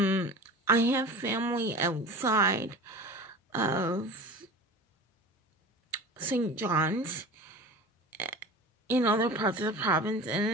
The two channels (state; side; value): normal; both; correlation 0.36